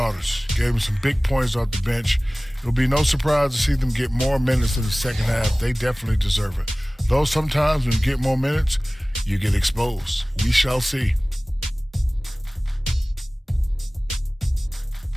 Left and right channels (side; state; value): both; normal; correlation 0.98